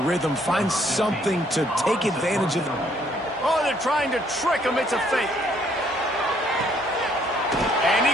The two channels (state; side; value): normal; both; correlation 0.65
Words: find something to take advantage of. Oh, they're trying to trick him. It's a fake. And he